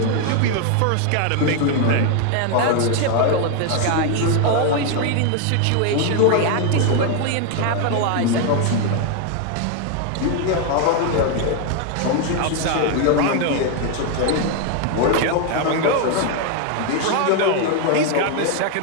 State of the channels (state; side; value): different; both; correlation 0.01